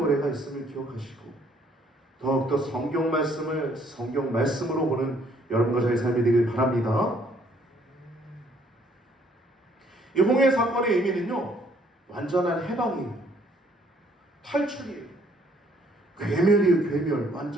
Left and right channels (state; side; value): normal; both; correlation 0.64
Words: 있음을 기억하시고 더욱더 성경 말씀을 성경 말씀으로 보는 여러분과 저의 삶이 되길 바랍니다. 이 홍해 사건의 의미는요 완전한 해방이에요. 탈출이에요. 괴멸이에요. 괴멸.